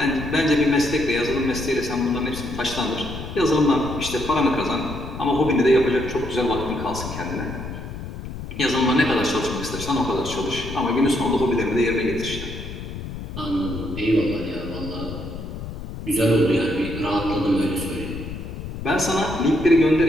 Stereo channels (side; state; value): left; noise; rumble, 9 dB below the sound